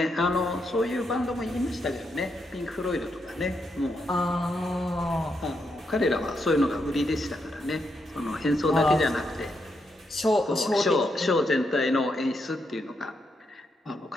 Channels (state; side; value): normal; both; correlation 0.81